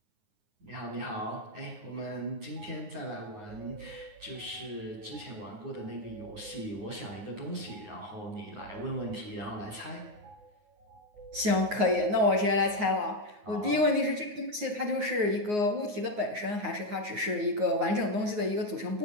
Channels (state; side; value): late; left; 9.6 ms